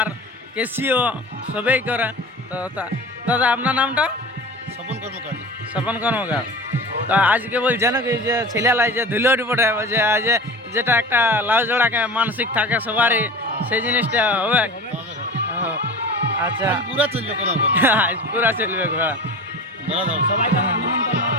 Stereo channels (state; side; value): normal; both; correlation 0.34